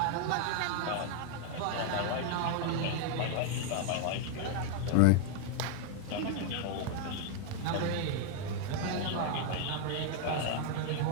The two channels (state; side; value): different; both; correlation 0.00